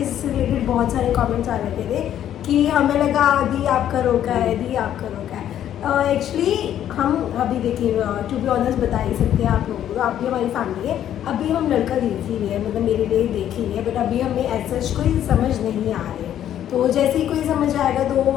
इससे रिलेटेड बहुत सारे कमेंट्स आ रखे थे कि हमें लगा दी आपका रोका है, दी आपका रोका है। एक्चुअली हम अभी देखिए, टू बी ऑनेस्ट बता ही सकते हैं आप लोगों को, आप भी हमारी फैमिली है। अभी हम लड़का देख ही रहे हैं, मतलब मेरे लिए देख ही रहे हैं, बट अभी हमें ऐसा कोई समझ नहीं आ रही है। तो जैसे ही कोई समझ आएगा, तो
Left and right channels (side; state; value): right; quieter; 10.8 dB